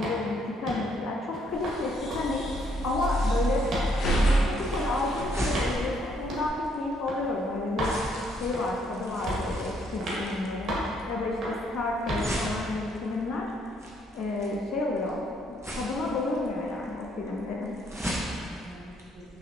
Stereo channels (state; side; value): normal; both; correlation 0.69